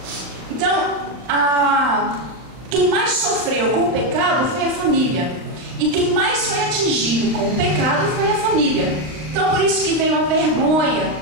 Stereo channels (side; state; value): left; late; 38 ms